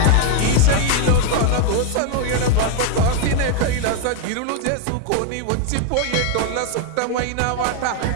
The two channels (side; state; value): both; different; correlation 0.01